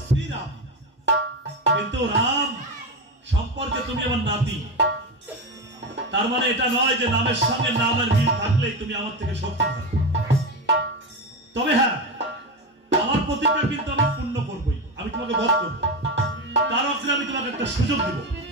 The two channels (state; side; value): normal; both; correlation 0.17